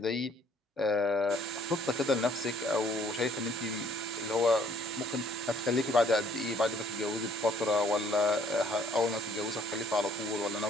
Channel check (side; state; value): both; normal; correlation 0.62